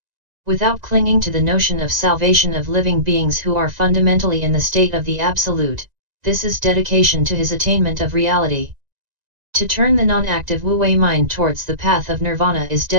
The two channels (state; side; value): late; left; 1.9 ms